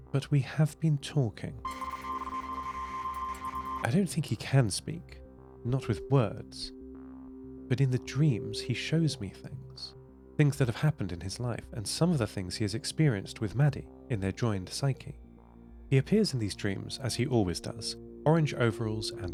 but we have been talking. I don't think he can speak, not with words, but in the dreams he shows me things that have happened in his life, and some of the things he has experienced with Maddie in their joined psyche. He appears in these dreams as he always does, orange overalls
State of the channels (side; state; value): both; identical; correlation 1.00